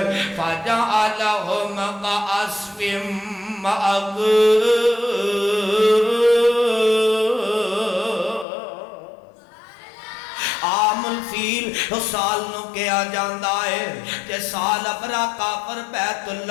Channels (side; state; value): right; drops out; at 8.5 s